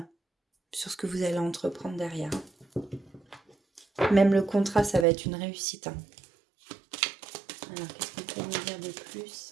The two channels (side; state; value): left; drops out; at 5.1 s